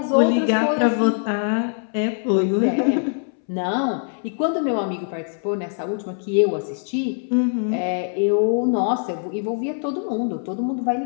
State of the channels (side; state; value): right; silent; 64 dB below the other